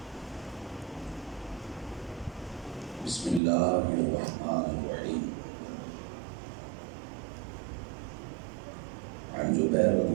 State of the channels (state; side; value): drops out; left; at 3.4 s